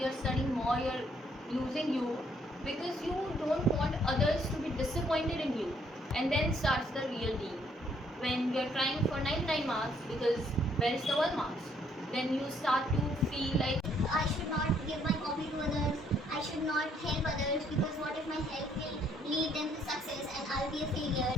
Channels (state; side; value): normal; both; correlation 0.67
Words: are studying more, you are losing you because you don't want others to be disappointed in you. And then starts the real deal, when you are trying for 99 marks because where is the 1 marks? Then you start to feel like I should not give my copy to others. I should not help others because what if my help will lead them to success and I'll be a failure.